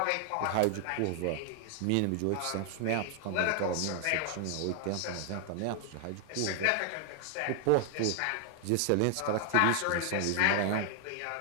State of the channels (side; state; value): both; different; correlation 0.00